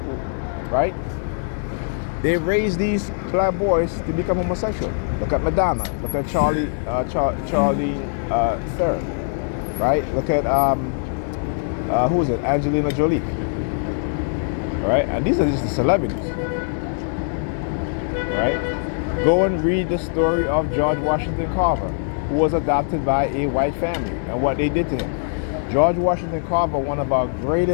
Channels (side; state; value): right; silent; 64 dB below the other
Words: right? They raise these black boys to become homosexual. Look at Madonna. Look at Charlie Theron, right? Look at who is it? Angelina Jolie, right? And these are just the celebrities, right? Go and read the story of George Washington Carver, who was adopted by a white family, and what they did to him. George Washington Carver, one of our